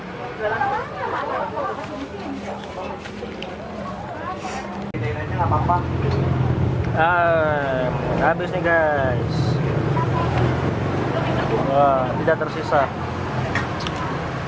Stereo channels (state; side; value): identical; both; correlation 1.00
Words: Habis nih guys. Wah, tidak tersisa.